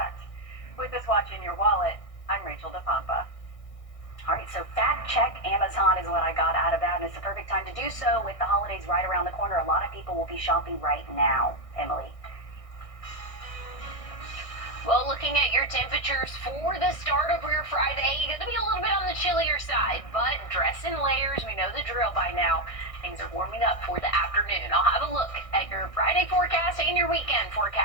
With this Watch in Your Wallet, I'm Rachel DePompa. All right, so fact check Amazon is what I got out of that, and it's the perfect time to do so with the holidays right around the corner. A lot of people will be shopping right now. Emily? Well, looking at your temperatures for the start of your Friday, going to be a little bit on the chillier side, but dress in layers. We know the drill by now. Things are warming up for the afternoon. I'll have a look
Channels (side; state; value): right; late; 1.6 ms